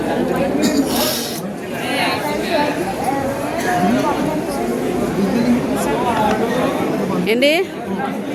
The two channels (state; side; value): identical; both; correlation 1.00